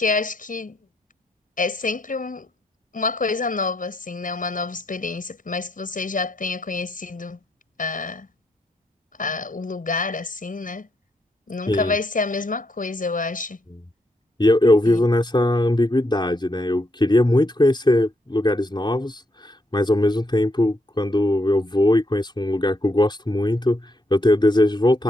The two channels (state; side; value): normal; both; correlation 0.77